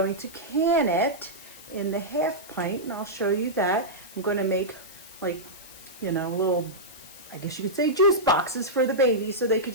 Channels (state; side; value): noise; left; hiss, 18 dB below the sound